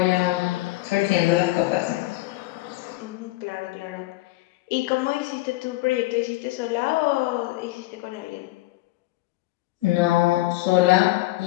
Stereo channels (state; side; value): quieter; right; 18.8 dB